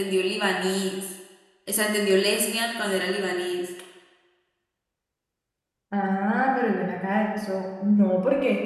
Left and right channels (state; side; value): identical; both; correlation 1.00